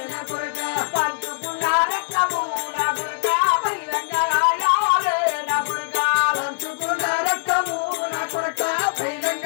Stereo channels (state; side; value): silent; right; digital silence